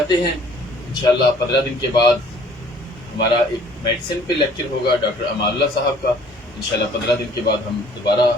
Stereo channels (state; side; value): normal; both; correlation 0.55